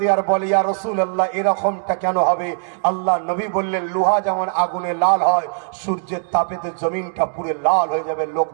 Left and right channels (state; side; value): silent; left; digital silence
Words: আর বলে, ইয়া রাসূলুল্লাহ এরকমটা কেন হবে? আল্লাহ নবী বললেন, লোহা যেমন আগুনে লাল হয়, সূর্যের তাপেতে জমিনটা পুরো লাল হয়ে যাবে, লোক